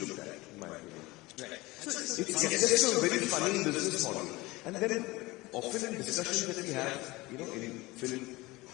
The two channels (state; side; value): quieter; right; 21.3 dB